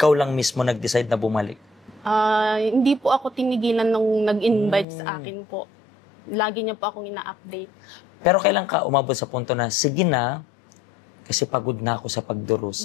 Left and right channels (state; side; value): drops out; right; at 4.9 s